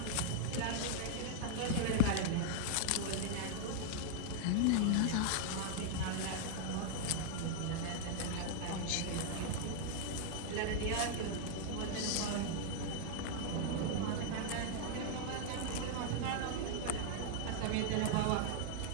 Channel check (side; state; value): both; different; correlation 0.00